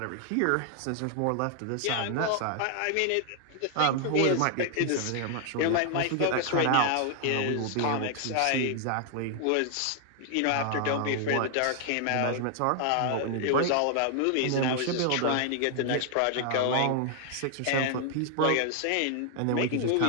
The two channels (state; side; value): different; both; correlation 0.00